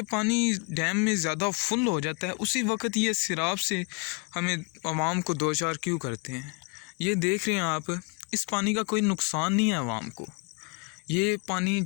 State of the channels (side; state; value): right; quieter; 32.4 dB